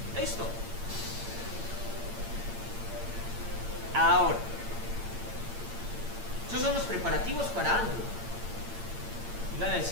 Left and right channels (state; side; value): late; left; 8.8 ms